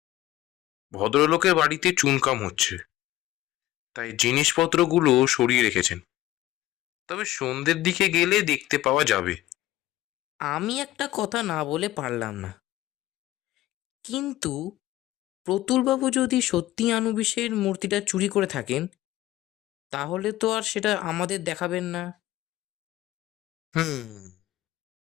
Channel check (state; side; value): quieter; right; 15.4 dB